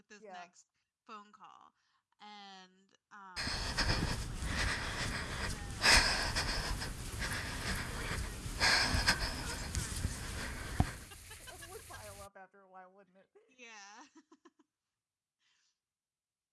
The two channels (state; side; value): identical; both; correlation 1.00